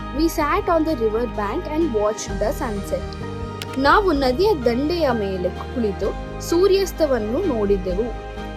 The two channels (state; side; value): identical; both; correlation 1.00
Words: We sat on the river bank and watch the sunset. ನಾವು ನದಿಯ ದಂಡೆಯ ಮೇಲೆ ಕುಳಿತು ಸೂರ್ಯಾಸ್ತವನ್ನು ನೋಡಿದೆವು.